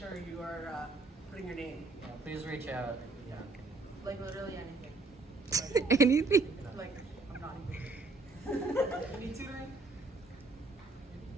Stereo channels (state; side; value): quieter; left; 3.5 dB